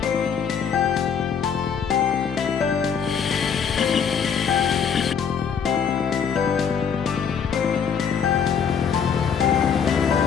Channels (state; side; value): quieter; right; 7.0 dB